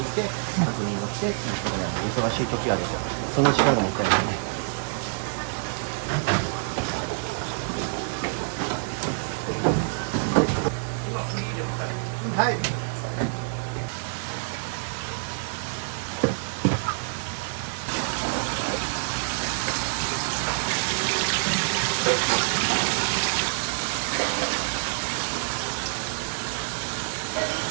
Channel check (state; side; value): silent; left; digital silence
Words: いて確認をしてっていうことなんで、忙しい時はその時間がもったいないね。はい。